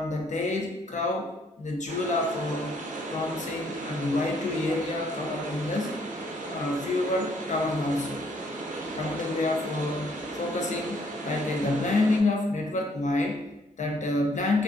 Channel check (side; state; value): both; normal; correlation 0.66